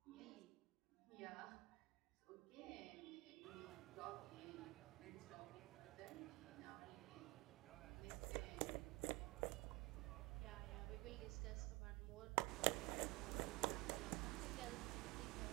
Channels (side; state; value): left; quieter; 23.7 dB